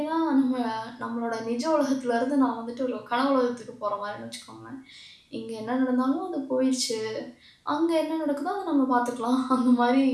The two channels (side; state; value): both; identical; correlation 1.00